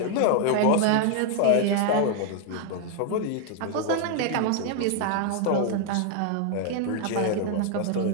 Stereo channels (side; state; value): both; different; correlation 0.00